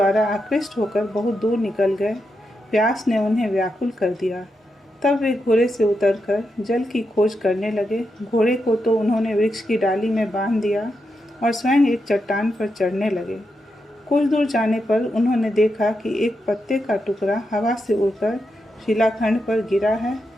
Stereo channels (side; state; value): both; normal; correlation 0.85